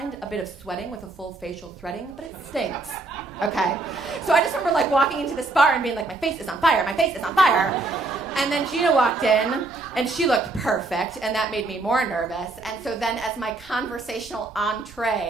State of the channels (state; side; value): quieter; left; 3.3 dB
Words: a bit of sweating with a full facial threading, but it stinks, okay? So I just remember walking into this bar and being like, my face is on fire, my face is on fire. And then Gina walked in, and she looked perfect, and that made me more nervous. And so then as my conversational